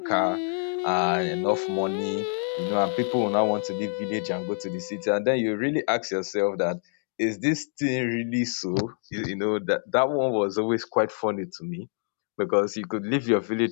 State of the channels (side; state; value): right; silent; 61 dB below the other